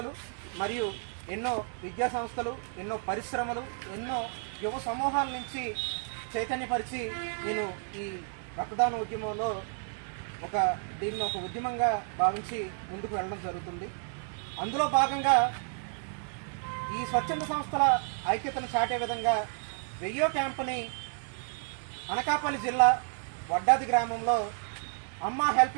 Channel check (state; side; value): silent; left; 57 dB below the other